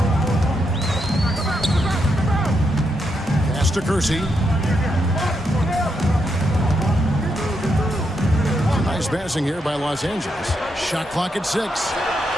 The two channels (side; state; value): both; normal; correlation 0.81